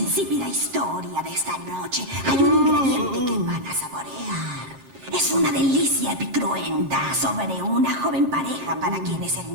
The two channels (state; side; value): late; left; 11 ms